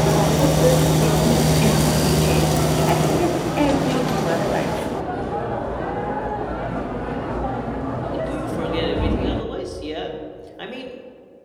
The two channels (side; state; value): both; identical; correlation 1.00